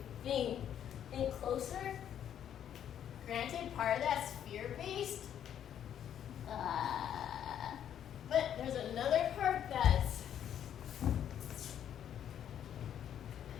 in closer. Granted, part of that's fear-based, but there's another part that's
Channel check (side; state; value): right; quieter; 9.8 dB